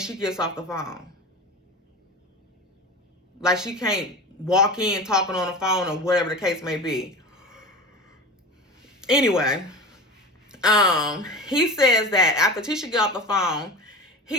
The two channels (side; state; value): both; normal; correlation 0.31